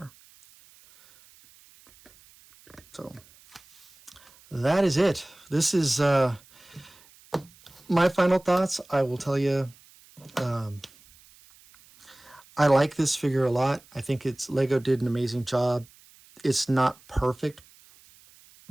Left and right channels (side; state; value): right; noise; hiss, 26 dB below the sound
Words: So that is it. This is my final thoughts. I will tell you, I like this figure a lot. I think Lego did an amazing job. It's not perfect